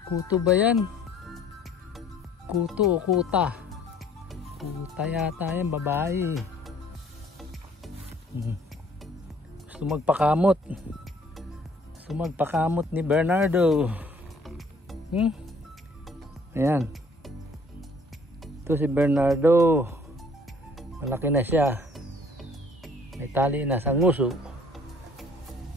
Kuto ba yan? Kuto o kuta? Kuta yata yan, babae. Gusto magpakamot. Gusto magpakamot ni Bernardo. Ayan. Ito si Bernardo. Malaki na siya. May tali na sa nguso.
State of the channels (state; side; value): normal; both; correlation 0.58